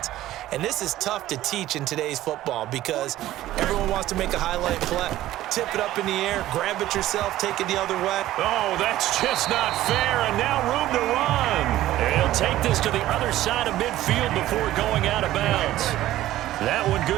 And this is tough to teach in today's football because everyone wants to make a highlight play. Tip it up in the air, grab it yourself, take it the other way. Oh, that's just not fair, and now room to run. And he'll take this to the other side of midfield before going out of bounds. That one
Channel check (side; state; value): left; quieter; 14.6 dB